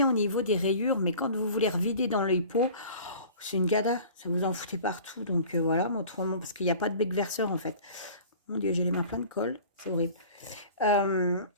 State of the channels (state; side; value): inverted; both; correlation -0.43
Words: au niveau des rayures. Mais quand vous voulez revider dans l'œil pot, c'est une gada. Ça vous en foutez partout. Donc voilà, autrement, parce qu'il n'y a pas de bec verseur en fait. Mon Dieu, j'ai les mains pleines de colle. C'est horrible.